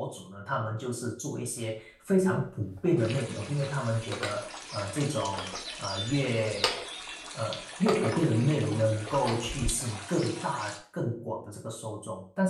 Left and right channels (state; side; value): identical; both; correlation 1.00